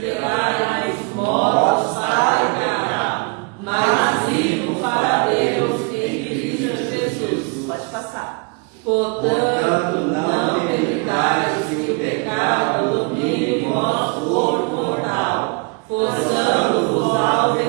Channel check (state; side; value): quieter; left; 32.3 dB